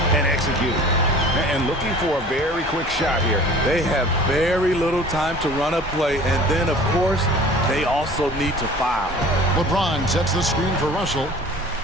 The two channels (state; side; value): normal; both; correlation 0.45